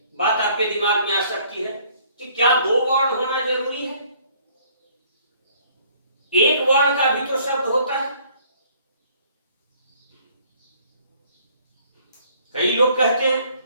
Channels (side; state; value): both; inverted; correlation -0.60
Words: बात आपके दिमाग में आ सकती है कि क्या दो वर्ण होना जरूरी है? एक वर्ण का भी तो शब्द होता है। कई लोग कहते